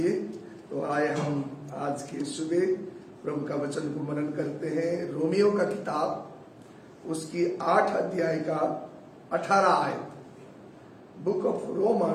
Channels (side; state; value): both; identical; correlation 1.00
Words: तो आए हम आज के सुबह प्रभु का वचन को मनन करते हैं। रोमियो का किताब उसकी 8 अध्याय का 18 आयत, book of